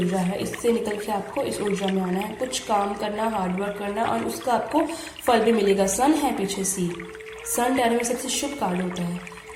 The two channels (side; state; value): both; identical; correlation 1.00